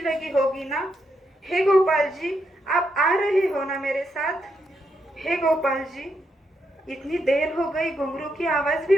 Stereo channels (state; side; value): normal; both; correlation 0.80